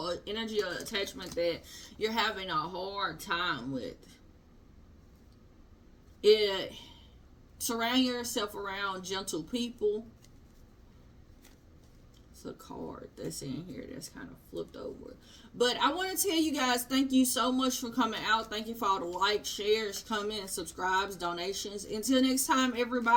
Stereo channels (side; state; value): both; identical; correlation 1.00